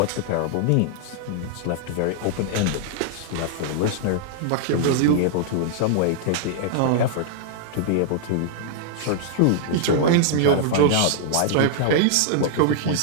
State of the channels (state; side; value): different; both; correlation -0.01